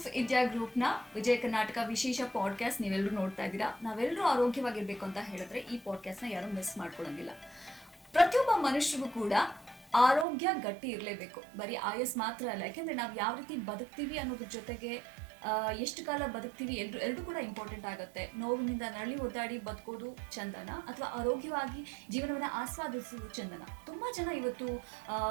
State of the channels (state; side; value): drops out; left; at 10.2 s